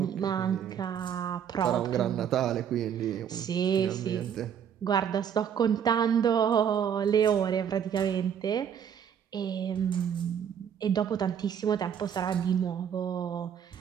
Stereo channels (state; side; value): quieter; left; 8.4 dB